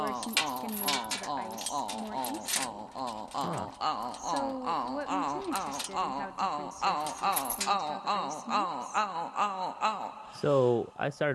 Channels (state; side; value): identical; both; correlation 1.00